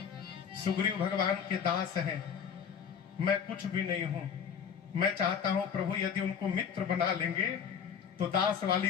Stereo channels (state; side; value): quieter; right; 7.4 dB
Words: सुग्रीव भगवान के दास हैं, मैं कुछ भी नहीं हूं। मैं चाहता हूं प्रभु यदि उनको मित्र बना लेंगे तो दास वाली